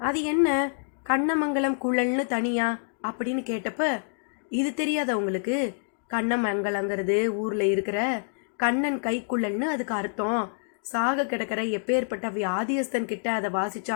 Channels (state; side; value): silent; right; digital silence